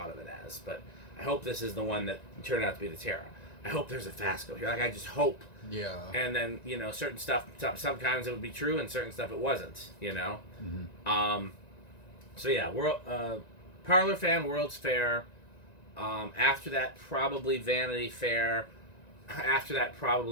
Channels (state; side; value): late; right; 1.9 ms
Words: of it as, but I hope this is the one that turned out to be the Terra. I hope there's a Fasco here. Like, I just hope. Yeah. And then, you know, certain stuff, sometimes it would be true, and certain stuff it wasn't, you know? So yeah, Parlor fan, World's Fair. After that, probably Vanity Fair. After that,